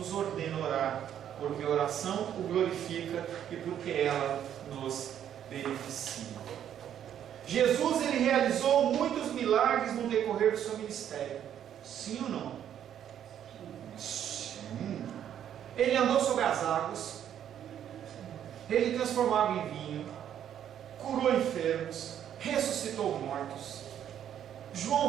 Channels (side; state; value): left; quieter; 9.9 dB